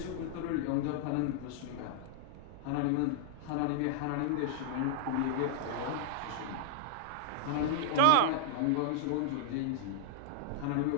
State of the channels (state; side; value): different; both; correlation -0.01